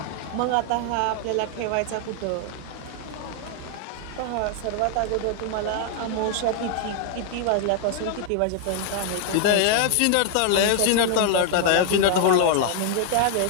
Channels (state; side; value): different; both; correlation 0.00